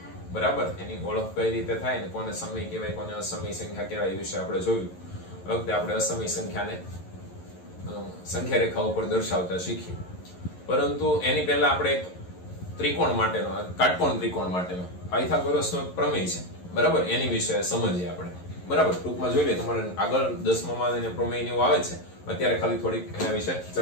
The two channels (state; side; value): late; right; 11 ms